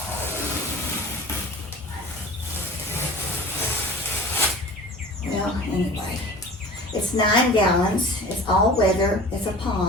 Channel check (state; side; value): normal; both; correlation 0.40